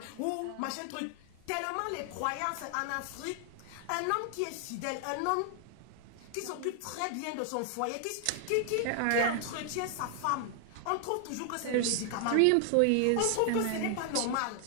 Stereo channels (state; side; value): different; both; correlation 0.00